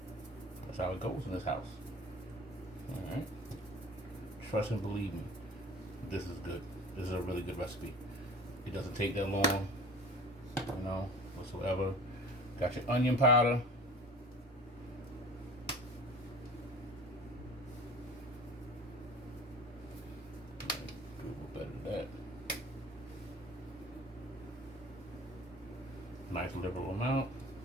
That's how it goes in this house. All right. Trust and believe me, this is good. This is a really good recipe. It doesn't take that long, whatsoever. Got your onion powder. Do a little better than that. Nice liberal amount.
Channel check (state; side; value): normal; both; correlation 0.42